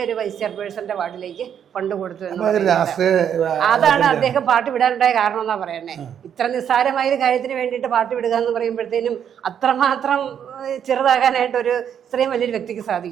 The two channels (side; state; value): left; quieter; 8.7 dB